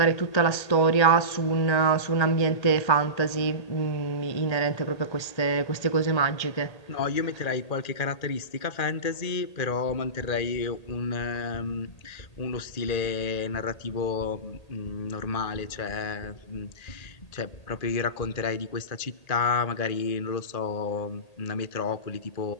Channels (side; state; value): right; late; 1.8 ms